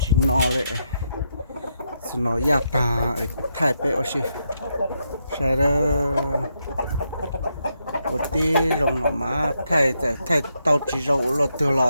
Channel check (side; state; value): both; inverted; correlation -0.81